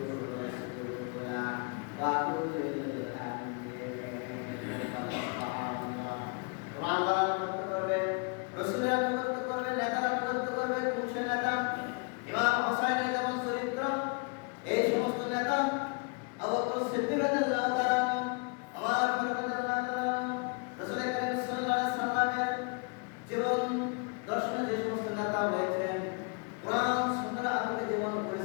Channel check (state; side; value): quieter; right; 33.9 dB